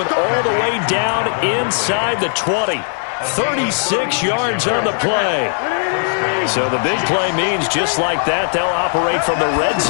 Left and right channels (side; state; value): right; silent; 61 dB below the other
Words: all the way down inside the 20. 36 yards on the play. So the big play means just like that, they'll operate from the red